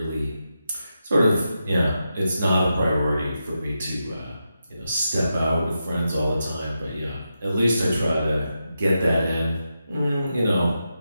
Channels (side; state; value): both; inverted; correlation -0.87